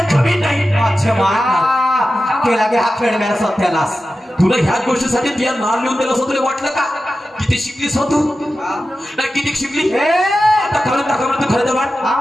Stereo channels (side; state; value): both; normal; correlation 0.93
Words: जमीन नाही केला गे हा खेळ मेरा सत्यानाश तुला ह्याच गोष्टीसाठी तुझ्या नाव लिहून दिलं असं तुला वाटलं का किती शिकलीस हो तू नाही किती शिकली आता खरं दाखव तू खरं वाट